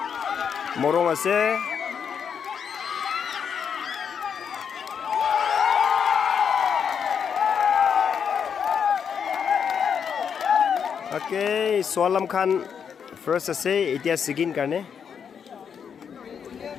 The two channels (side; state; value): right; quieter; 7.2 dB